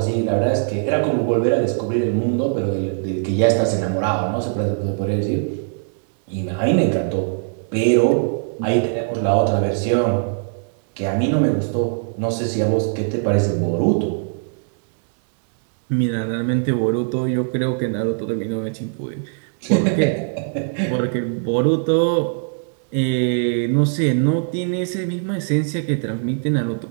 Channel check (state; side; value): silent; left; digital silence